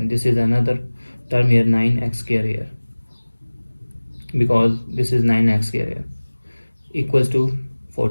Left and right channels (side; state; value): both; inverted; correlation -1.00